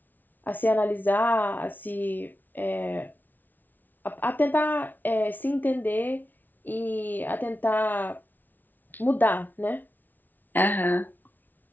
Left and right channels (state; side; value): late; right; 0.085 ms